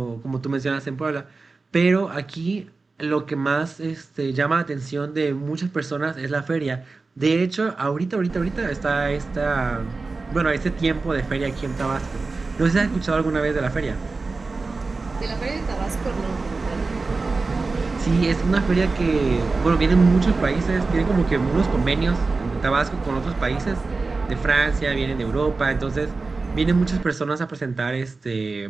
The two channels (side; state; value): left; quieter; 3.9 dB